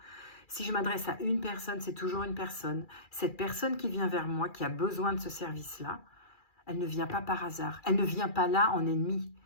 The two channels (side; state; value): right; late; 2.4 ms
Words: Si je m'adresse à une personne, c'est toujours une personne. Cette personne qui vient vers moi, qui a besoin de ce service-là, elle ne vient pas par hasard. Elle ne vient pas là en ennemi.